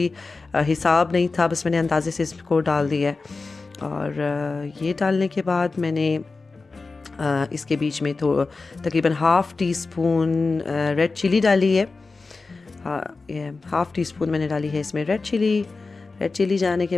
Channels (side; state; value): right; quieter; 3.9 dB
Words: हिसाब नहीं था, बस मैंने अंदाज़े से इसको डाल दिया है। और ये डालने के बाद मैंने इसके बीच में तो तकरीबन 1/2 टीस्पून रेड चिली डाली है। ये 1/2 टीस्पून मैंने डाली है इसमें रेड चिली जाने के